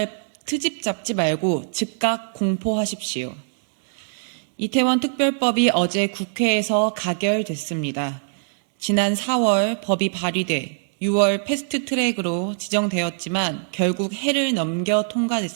잡지 말고 즉각 공포하십시오. 이태원 특별법이 어제 국회에서 가결됐습니다. 지난 4월 법이 발의돼 6월 패스트트랙으로 지정되었지만 결국 해를 넘겨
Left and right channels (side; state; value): left; silent; digital silence